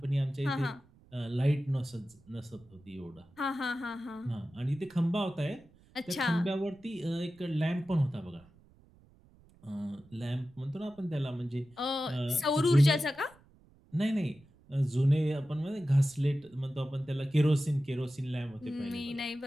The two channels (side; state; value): right; noise; rumble, 28 dB below the sound